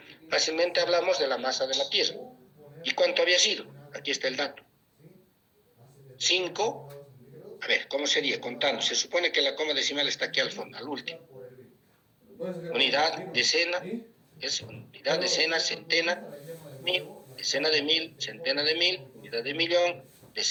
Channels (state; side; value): identical; both; correlation 1.00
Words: fácilmente hablamos de la masa de la Tierra. ¿Y cuánto había sido? Aquí está el dato. 5, a ver, ¿cómo sería? Contando. Se supone que la coma decimal está aquí al fondo, al último. Unidad, decena, es unidad, decena, centena, mil, decena de mil, centena de mil, unidad de millón,